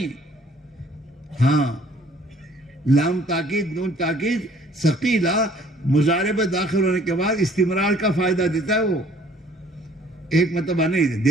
ہاں، لام تاکید، نون تاکید ثقیلہ مضارع میں داخل ہونے کے بعد استمرار کا فائدہ دیتا ہے، وہ ایک مرتبہ نہیں،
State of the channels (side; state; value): both; normal; correlation 0.57